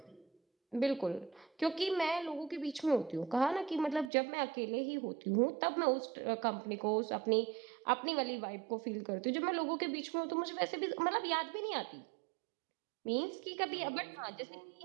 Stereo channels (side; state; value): left; drops out; at 4.1 s